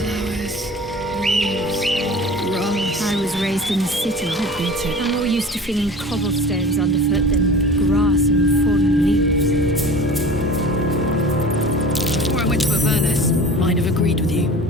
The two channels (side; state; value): both; normal; correlation 0.39